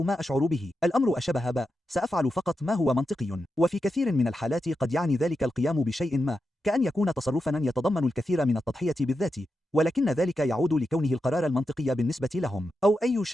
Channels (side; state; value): both; normal; correlation 0.88